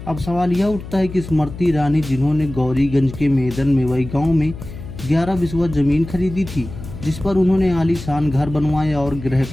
अब सवाल यह उठता है कि स्मृति ईरानी, जिन्होंने गौरीगंज के मेदन मेवई गांव में 11 बिस्वा जमीन खरीदी थी, जिस पर उन्होंने आलीशान घर बनवाया और गृह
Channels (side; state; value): left; noise; hum, 12 dB below the sound